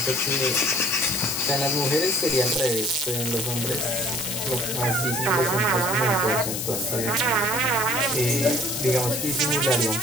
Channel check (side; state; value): left; noise; hiss, 3 dB below the sound